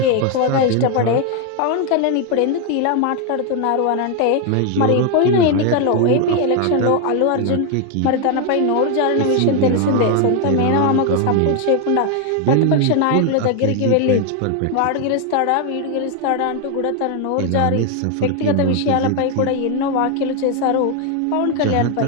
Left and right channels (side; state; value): both; different; correlation 0.01